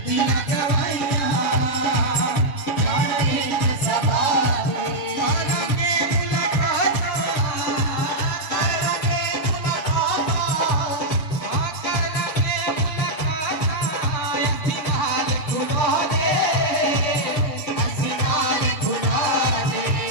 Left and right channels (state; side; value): late; right; 6.7 ms